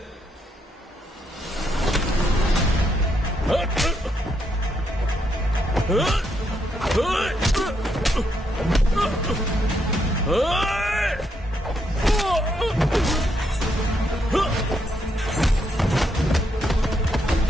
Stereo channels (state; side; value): normal; both; correlation 0.77